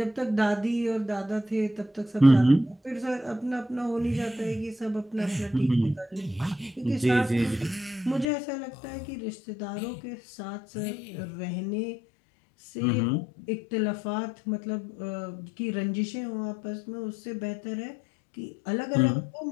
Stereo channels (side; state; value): right; drops out; at 8.2 s